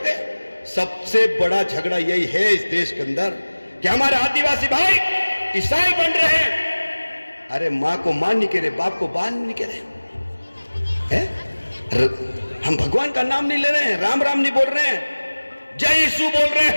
सबसे बड़ा झगड़ा यही है इस देश के अंदर कि हमारे आदिवासी भाई ईसाई बन रहे हैं। अरे मां को मां नहीं कह रहे, बाप को बाप नहीं कह रहे हैं। हम भगवान का नाम नहीं ले रहे हैं, राम राम नहीं बोल रहे हैं, जय यीशु बोल रहे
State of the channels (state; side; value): inverted; both; correlation -1.00